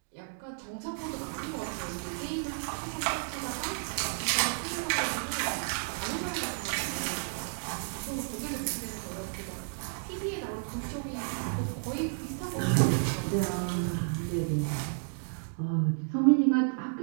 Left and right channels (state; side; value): silent; left; digital silence